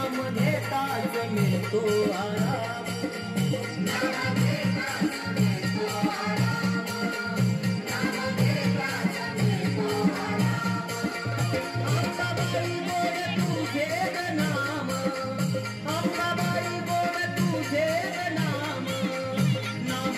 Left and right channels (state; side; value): identical; both; correlation 1.00